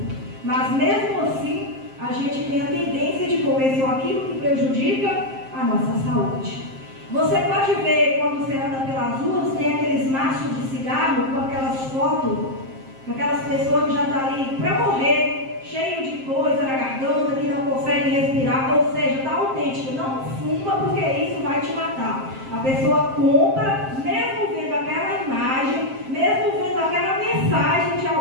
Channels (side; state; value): left; late; 7.6 ms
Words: Mas mesmo assim, a gente tem a tendência de comer só aquilo que prejudica a nossa saúde. Você pode ver quando você anda pelas ruas, tem aqueles maços de cigarro com aquelas fotos, com aquelas pessoas que já estão ali para morrer, cheio de coisa na garganta, que não consegue respirar, ou seja, está autêntico, não fuma porque isso vai te matar. A pessoa compra, mesmo vendo aquela imagem, mesmo vendo aquela mensagem de